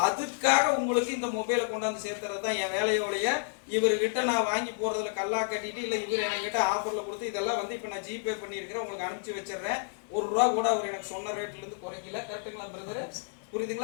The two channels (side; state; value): right; silent; digital silence